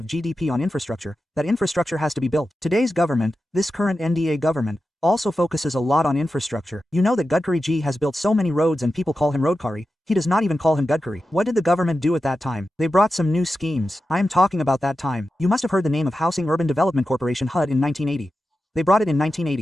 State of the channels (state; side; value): normal; both; correlation 0.91